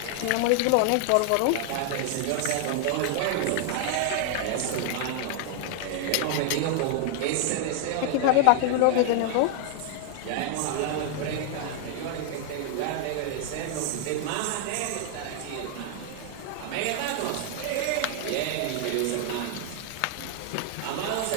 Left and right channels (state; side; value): different; both; correlation 0.00